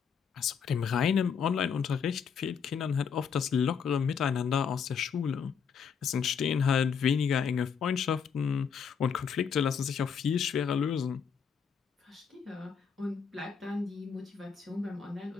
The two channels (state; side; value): quieter; right; 6.7 dB